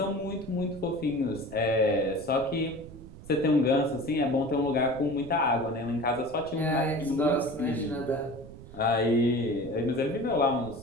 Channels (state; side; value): noise; right; rumble, 16 dB below the sound